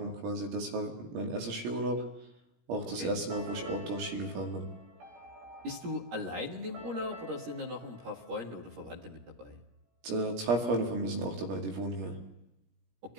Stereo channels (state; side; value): late; left; 17 ms